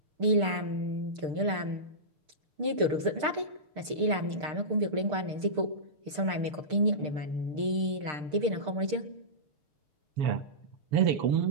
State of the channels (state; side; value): late; left; 6.6 ms